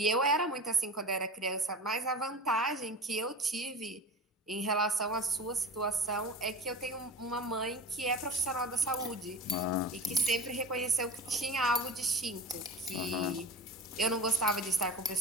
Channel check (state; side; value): normal; both; correlation 0.33